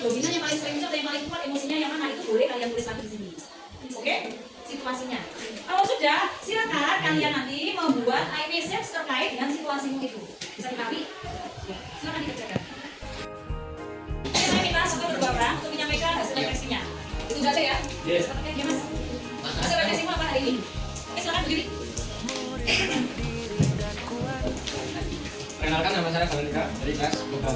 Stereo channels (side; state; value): both; identical; correlation 1.00